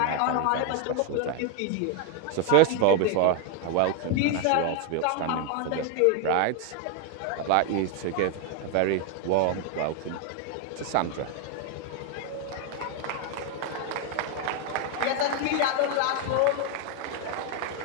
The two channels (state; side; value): different; both; correlation 0.00